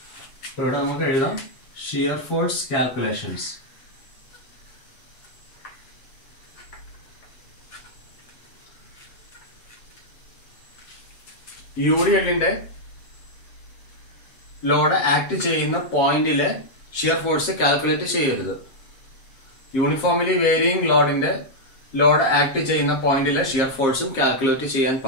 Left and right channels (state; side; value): late; right; 7.5 ms